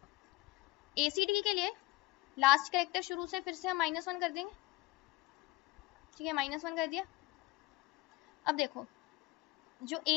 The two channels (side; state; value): right; quieter; 19.6 dB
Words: ACD के लिए लास्ट करेक्टर शुरू से फिर से हम -1 कर देंगे, ठीक है, -1 कर दिया। अब देखो जो